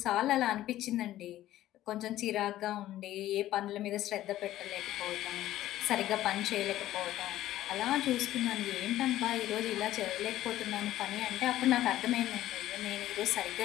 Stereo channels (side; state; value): right; quieter; 14.0 dB